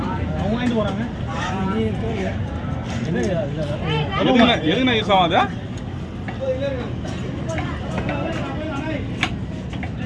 எதுனா யூஸ் ஆகும் அது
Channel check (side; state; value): both; identical; correlation 1.00